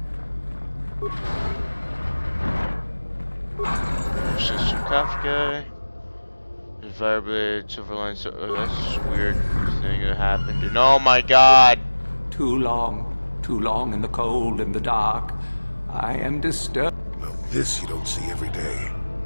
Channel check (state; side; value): inverted; both; correlation -1.00